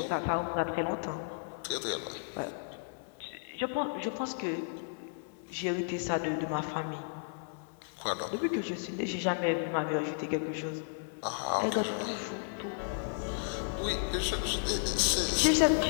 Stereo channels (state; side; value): silent; right; 55 dB below the other